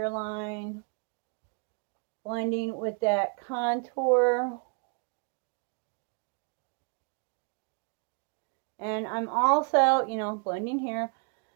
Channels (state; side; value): quieter; left; 36.9 dB